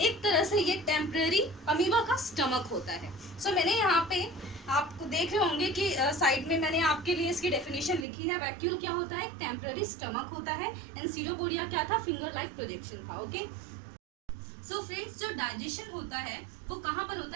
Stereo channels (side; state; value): left; drops out; at 8.1 s